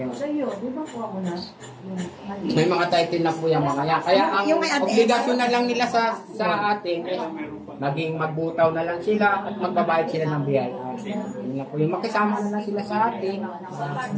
May mga title na po yung mga yan. Kaya ang obligasyon na lang nila sa atin is maging magbutaw na lang sila at magbabayad sila ng biyaya. Yun na po yung makisama na lang sila sa atin.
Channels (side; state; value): both; identical; correlation 1.00